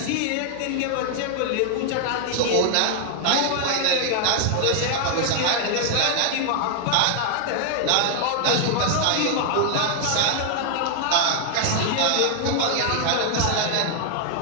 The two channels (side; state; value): both; different; correlation 0.00